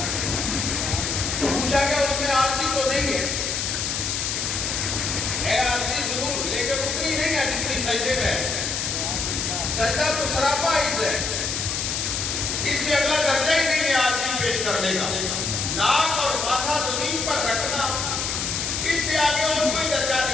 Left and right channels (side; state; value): left; noise; hiss, 1 dB below the sound